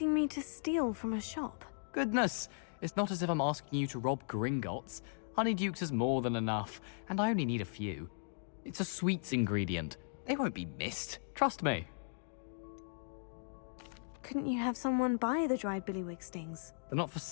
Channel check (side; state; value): right; silent; digital silence